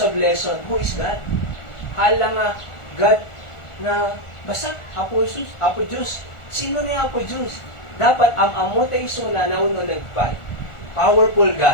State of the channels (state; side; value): late; right; 1.4 ms